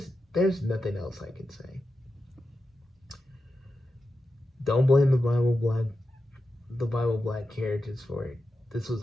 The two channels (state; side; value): normal; both; correlation 0.90